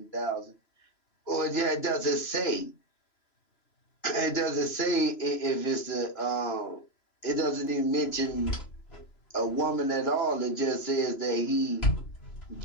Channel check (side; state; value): right; late; 3.0 ms